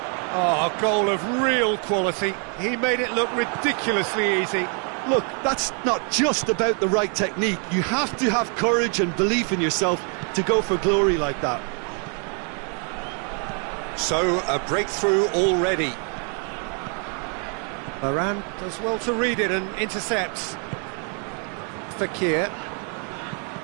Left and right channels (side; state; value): left; quieter; 39.7 dB